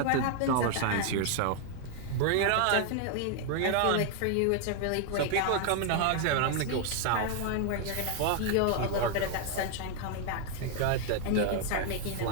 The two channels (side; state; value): both; different; correlation 0.00